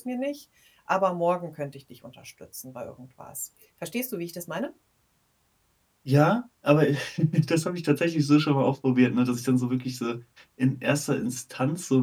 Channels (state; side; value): identical; both; correlation 1.00